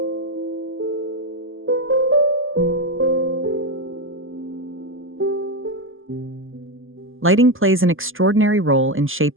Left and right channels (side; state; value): left; late; 0.59 ms